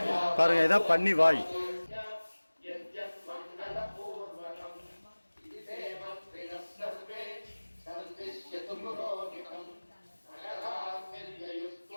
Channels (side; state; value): both; inverted; correlation -1.00